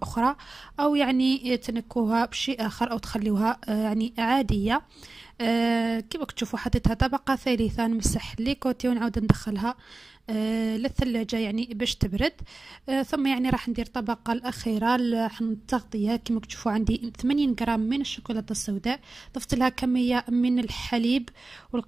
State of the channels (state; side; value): quieter; left; 3.2 dB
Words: أخرى، أو يعني تنكوها بشيء آخر أو تخليوها يعني عادية. كما تشوفوا حطيتها طبقة ثالثة. نمسح لي كوتي ونعاود ندخلها للثلاجة يعني باش تبرد. ثم يعني راح ندير الطبقة الأخيرة التغطية. كما تشوفوا عندي 80 غرام من الشوكولاتة السوداء. ضفت لها كمية من الحليب